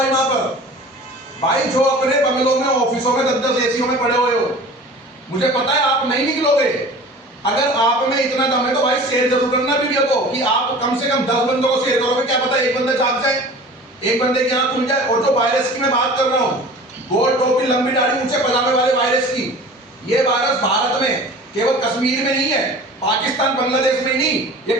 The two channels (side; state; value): both; normal; correlation 0.41